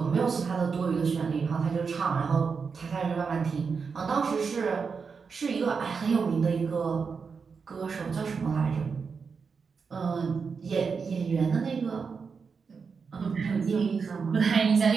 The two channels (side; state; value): left; quieter; 5.4 dB